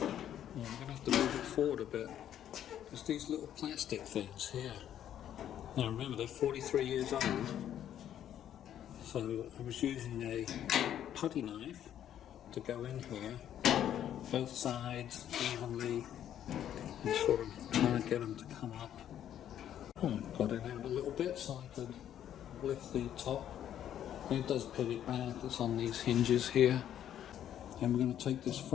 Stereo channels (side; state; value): right; quieter; 10.6 dB